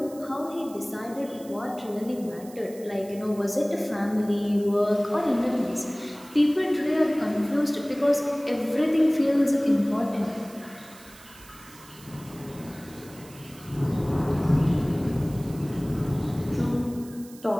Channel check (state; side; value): noise; right; hiss, 21 dB below the sound